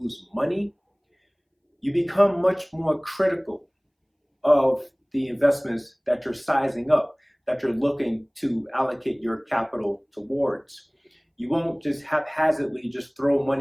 money, you become much more critical of the investments that you're sizing up, that you're looking to allocate your capital towards. You won't just haphazardly just throw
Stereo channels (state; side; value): identical; both; correlation 1.00